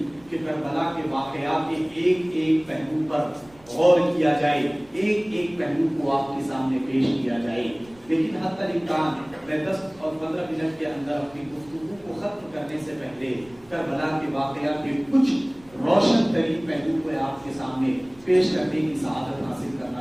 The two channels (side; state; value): right; noise; rumble, 27 dB below the sound